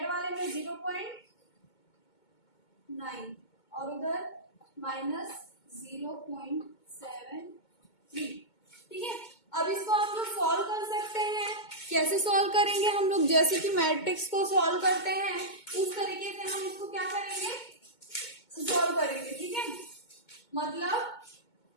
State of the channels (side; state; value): right; late; 2.2 ms